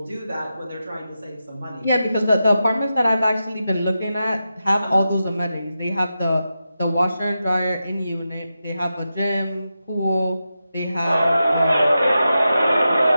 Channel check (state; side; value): inverted; both; correlation -0.90